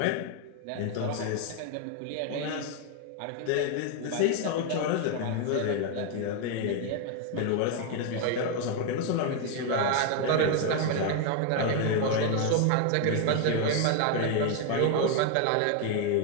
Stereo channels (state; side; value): different; both; correlation 0.01